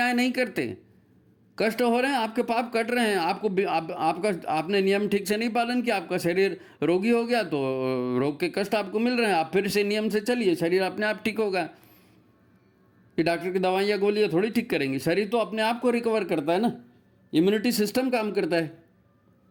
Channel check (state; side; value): identical; both; correlation 1.00